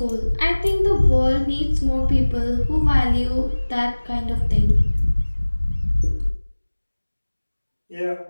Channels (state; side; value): inverted; both; correlation -1.00